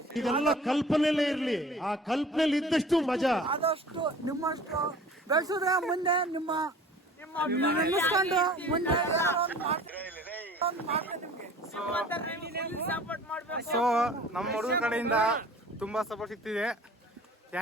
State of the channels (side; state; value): both; normal; correlation 0.46